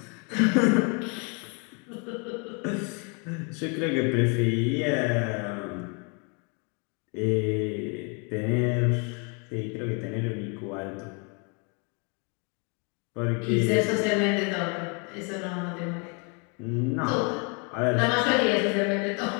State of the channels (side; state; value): right; quieter; 35.1 dB